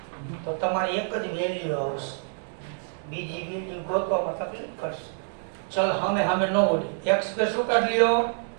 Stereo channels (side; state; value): left; silent; digital silence